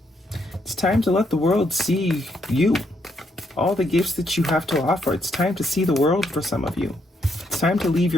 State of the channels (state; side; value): normal; both; correlation 0.75